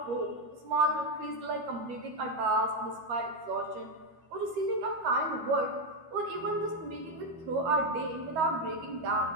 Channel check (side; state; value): left; late; 13 ms